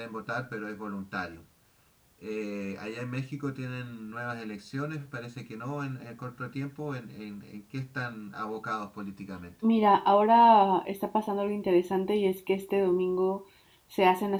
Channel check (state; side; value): identical; both; correlation 1.00